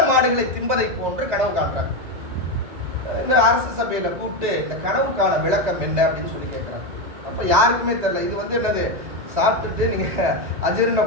மாடுகளை திம்பதை போன்று கனவு காண்றாங்க. இந்த அரசு சபையில கூப்பிட்டு இந்த கனவுக்கான விளக்கம் என்ன அப்படின்னு சொல்லி கேட்கிறாங்க. அப்ப யாருக்குமே தெரியல. இது வந்து என்னது, சாப்பிட்டுட்டு நீங்க அஜீரண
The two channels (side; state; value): left; late; 2.0 ms